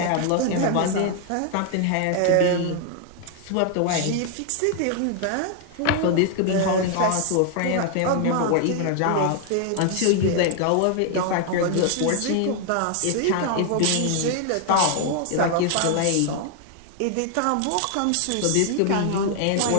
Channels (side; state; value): both; different; correlation 0.00